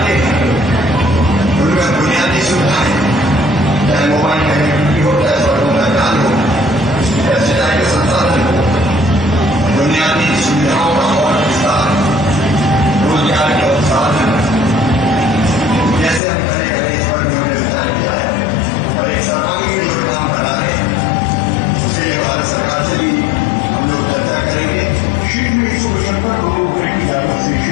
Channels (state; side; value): drops out; right; at 16.2 s